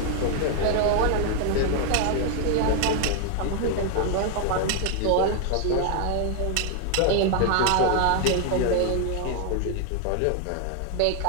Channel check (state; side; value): different; both; correlation 0.01